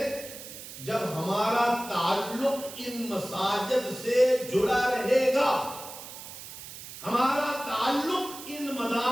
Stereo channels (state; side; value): noise; right; hiss, 13 dB below the sound